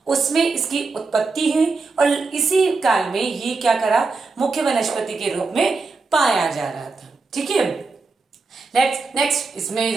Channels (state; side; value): quieter; left; 4.1 dB